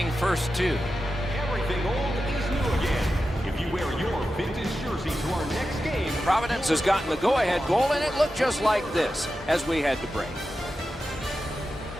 first two. Everything old is new again. If you wear your vintage jersey to our next game. Providence has gotten the go-ahead goal, and it looked just like this as we had to break.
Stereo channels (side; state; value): both; normal; correlation 0.91